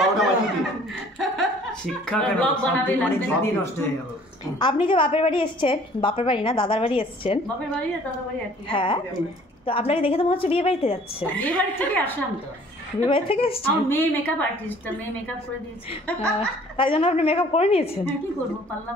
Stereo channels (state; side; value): normal; both; correlation 0.54